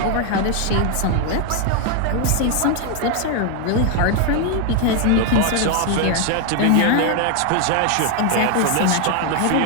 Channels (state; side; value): different; both; correlation 0.01